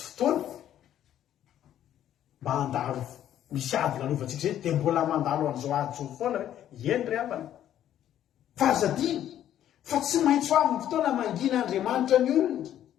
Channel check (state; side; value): quieter; right; 11.2 dB